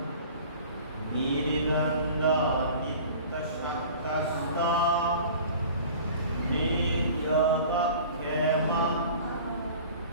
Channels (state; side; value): inverted; both; correlation -0.43